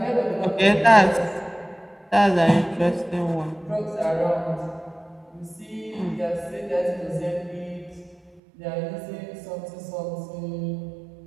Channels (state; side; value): drops out; left; at 8.4 s